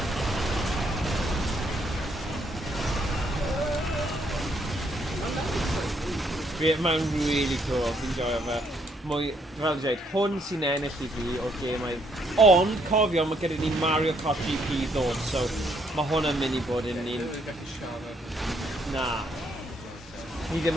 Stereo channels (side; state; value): both; normal; correlation 0.71